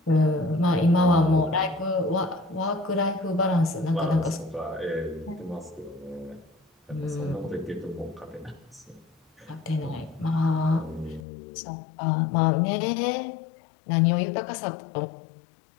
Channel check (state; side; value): drops out; right; at 11.2 s